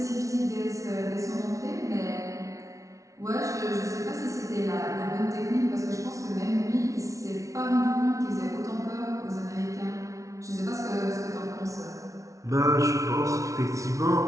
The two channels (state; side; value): late; left; 0.15 ms